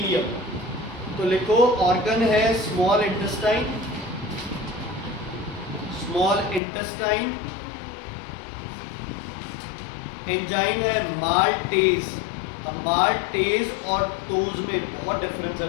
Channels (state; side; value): drops out; right; at 6.6 s